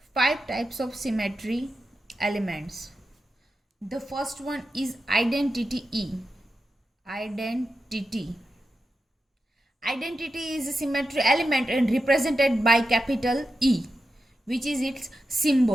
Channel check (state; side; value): normal; both; correlation 0.89